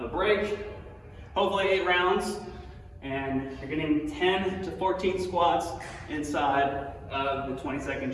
a break, hopefully 8 rounds, and you're getting 10 to 14 squats inside of the 20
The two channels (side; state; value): both; identical; correlation 1.00